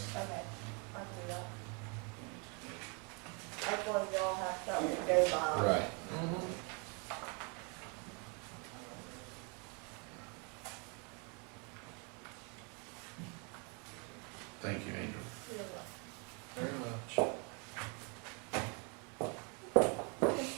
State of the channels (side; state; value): left; quieter; 34.3 dB